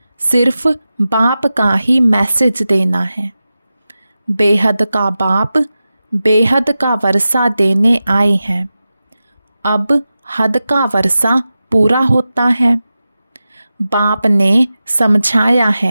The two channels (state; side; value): inverted; both; correlation -0.93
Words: सिर्फ बाप का ही मैसेज देना है। बेहद का बाप बेहद का वर्षा देने आए हैं। अब हद का वर्षा पूरा होता है। बाप ने समझाया